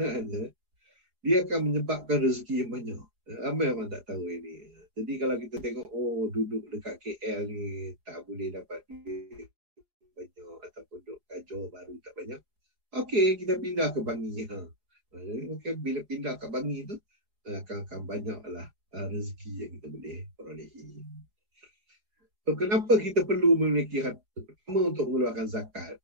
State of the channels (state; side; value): late; left; 4.8 ms